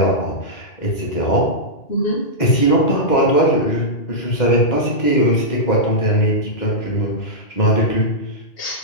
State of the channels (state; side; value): late; right; 2.1 ms